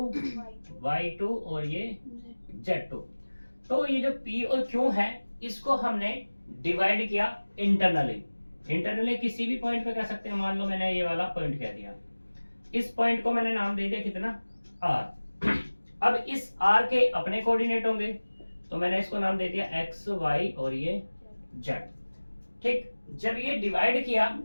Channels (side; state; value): both; inverted; correlation -1.00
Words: y2 और ये z2। तो ये जो p और q है, इसको हमने डिवाइड किया इंटरनली। इंटरनली किसी भी पॉइंट पे कह सकते हैं, मान लो मैंने ये वाला पॉइंट कह दिया, इस पॉइंट को मैंने नाम दे दिया कितना, r। अब इस r के अपने कोऑर्डिनेट होंगे, तो मैंने इसको नाम दे दिया x y और ये z, ठीक। जब ये डिवाइड किया